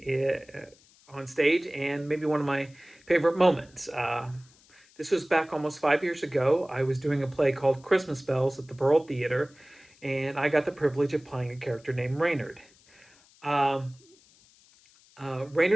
on stage, and maybe one of my favorite moments. This was back almost 5 years ago. I was doing a play called Christmas Bells at the Borough Theater, and I got the privilege of playing a character named Reynard. Um,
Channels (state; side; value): noise; left; hiss, 29 dB below the sound